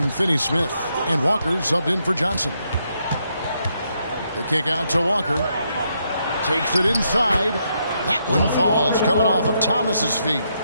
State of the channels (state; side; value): inverted; both; correlation -0.78